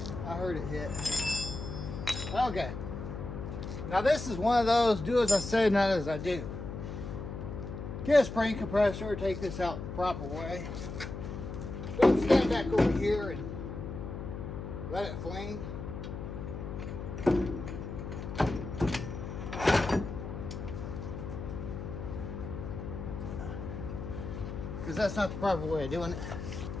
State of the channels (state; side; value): noise; left; hum, 7 dB below the sound